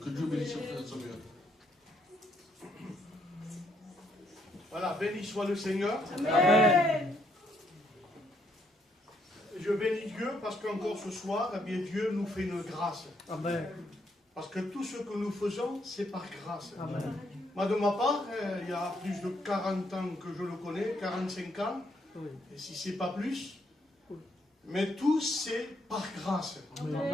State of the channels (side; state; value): both; normal; correlation 0.72